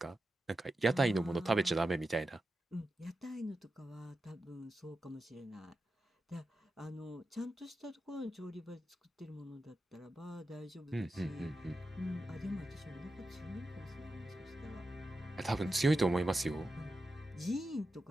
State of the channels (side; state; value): both; normal; correlation 0.90